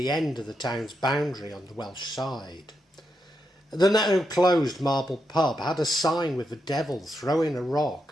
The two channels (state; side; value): normal; both; correlation 0.84